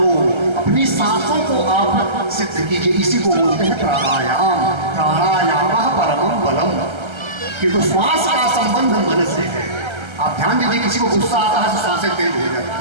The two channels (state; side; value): late; left; 1.3 ms